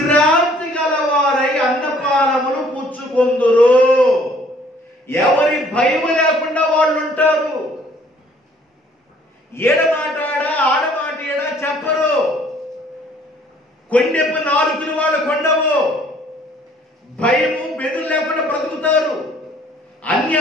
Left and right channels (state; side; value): normal; both; correlation 0.59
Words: గలవారై అన్నపానములు పుచ్చుకొందురు. ఎవరి భయము లేకుండా వాళ్ళు ఉంటారు. ఏడమాటాడా ఆడమాట ఏడా చెప్పరు. కొండెప్పు నాలుగులు వాళ్ళు కొండవు. భయము బెదురు లేకుండా బ్రతుకుతారు.